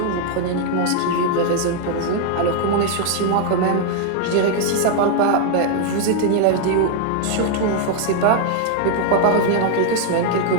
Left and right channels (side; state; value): both; different; correlation 0.00